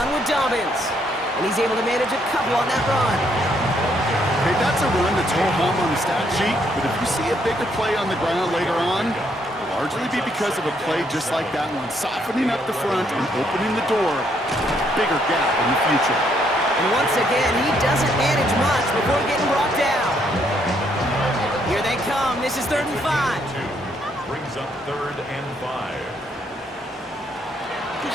run with Dobbins. And he's able to manage a couple on that run. Hey, that's a run that's ho-hum on the stat sheet, but if you see a bigger play on the ground later on, it'll largely be because of a play just like that one, softening up the front and opening the door, bigger gap in the future. And once again, he doesn't manage much before getting brought down. Here they come. This is 3rd and 5. Brings up 3rd and 5.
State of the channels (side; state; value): both; normal; correlation 0.71